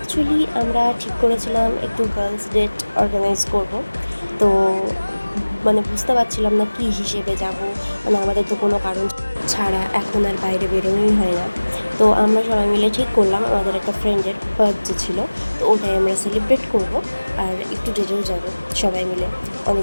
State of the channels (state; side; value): inverted; both; correlation -1.00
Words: আমরা ঠিক করেছিলাম একটু গার্লস ডেট অর্গানাইজ করব। তো বুঝতে পারছিলাম না কী হিসেবে যাব, আমাদের তো কোনো কারণ ছাড়া এখন আর বাইরে বেরোনোই হয় না। তো আমরা সবাই মিলে ঠিক করলাম আমাদের একটা ফ্রেন্ডের বার্থডে ছিল, তো ওটাই আমরা সেলিব্রেট করব আর একটু ডেটেও যাব সবাই মিলে।